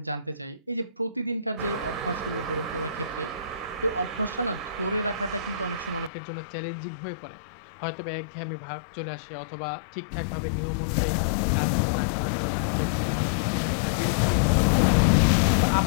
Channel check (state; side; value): drops out; right; at 6.1 s